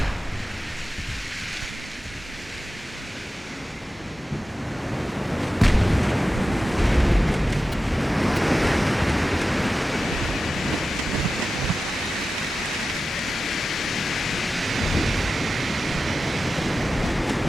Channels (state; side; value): normal; both; correlation 0.93